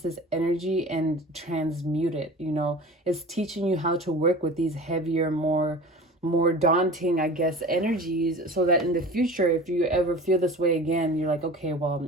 this energy and transmute it. You know, it's teaching you how to work with these heavier, more daunting, I guess, energies, so that in the future, if you ever feel this way again, you're like, okay, well,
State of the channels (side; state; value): both; normal; correlation 0.38